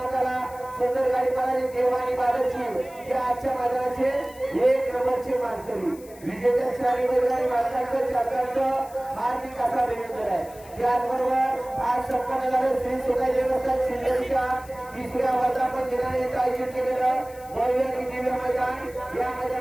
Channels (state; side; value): noise; left; hiss, 22 dB below the sound